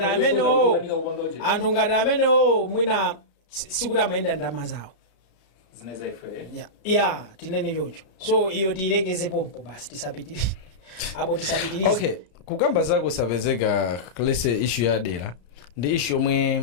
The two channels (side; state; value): right; late; 34 ms